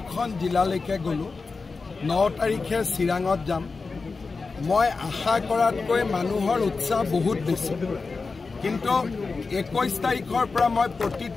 জিলালৈকে গ'লোঁ। 9 তাৰিখে চিৰাঙত যাম। মই আশা কৰাতকৈ মানুহৰ উৎসাহ বহুত বেছি, কিন্তু 21 তাৰিখৰ পৰা মই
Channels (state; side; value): quieter; right; 4.3 dB